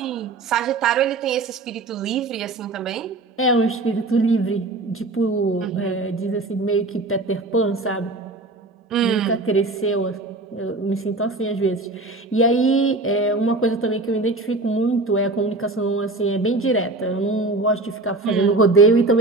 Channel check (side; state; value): left; quieter; 3.2 dB